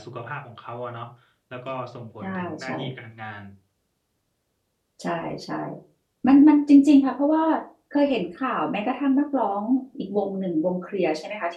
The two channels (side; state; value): both; identical; correlation 1.00